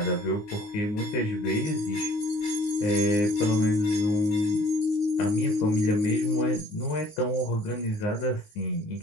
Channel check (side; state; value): right; late; 19 ms